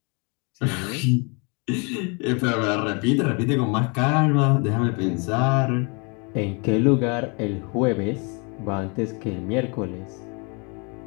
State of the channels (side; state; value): right; quieter; 32.8 dB